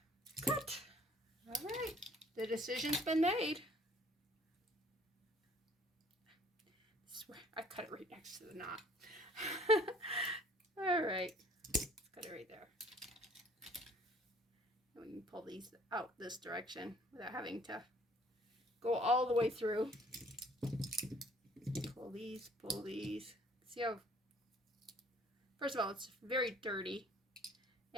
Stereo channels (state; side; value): normal; both; correlation 0.57